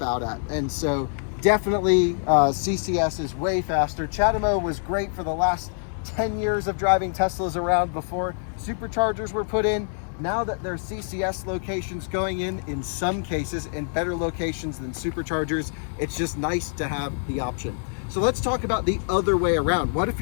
out at. And so definitely CCS is way faster. CHAdeMO was great for the last 10 years of driving Teslas around before superchargers were put in. Now that there's CCS locations going in some cases in better locations than superchargers, it's just nice to have the option. So let's talk about the other way around. What if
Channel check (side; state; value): right; silent; 62 dB below the other